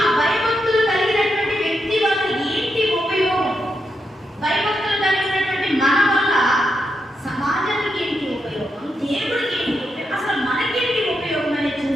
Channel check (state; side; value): normal; both; correlation 0.84